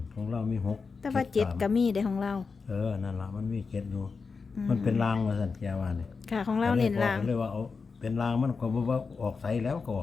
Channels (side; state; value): right; quieter; 4.9 dB